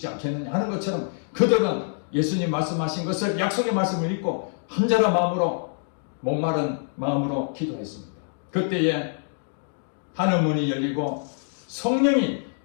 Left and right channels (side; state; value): right; silent; digital silence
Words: 않겠느냐 하는 것처럼 그들은 예수님 말씀하신 것을 약속의 말씀을 믿고 간절한 마음으로 목마른 마음으로 기도했습니다. 그때에 하늘문이 열리고 성령이